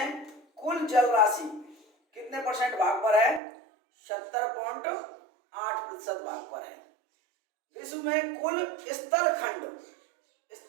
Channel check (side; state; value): left; drops out; at 3.4 s